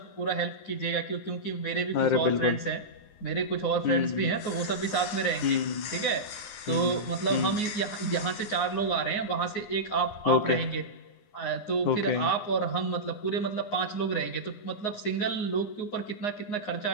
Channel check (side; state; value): right; late; 9.6 ms